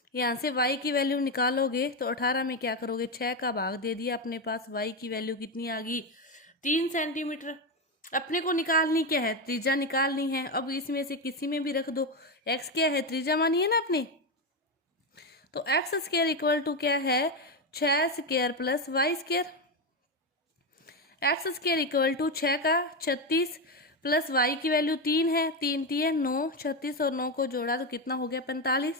यहाँ से y की वैल्यू निकालोगे तो 18 में क्या करोगे 6 का भाग दे दिया, अपने पास y की वैल्यू कितनी आ गई 3 सेंटीमीटर। अपने को निकालनी क्या है त्रिज्या निकालनी है। अब इसमें से किसी में भी रख दो, x क्या है त्रिज्या मानी है ना अपने, तो x स्क्वायर इक्वल टू क्या है 6 square plus y square. x square equal to 6 का 36 प्लस y की वैल्यू 3 है, 3 3 9, 36 और 9 को जोड़ा तो कितना हो गया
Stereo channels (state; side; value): normal; both; correlation 0.11